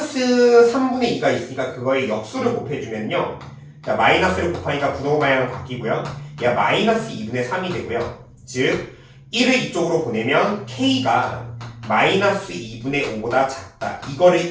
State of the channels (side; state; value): both; identical; correlation 1.00